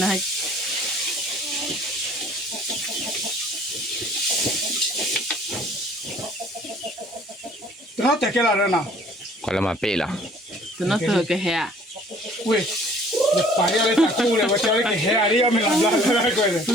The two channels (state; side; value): normal; both; correlation 0.55